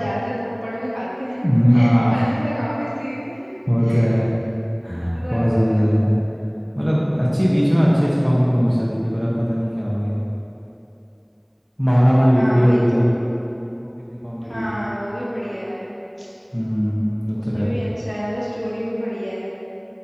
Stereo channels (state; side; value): identical; both; correlation 1.00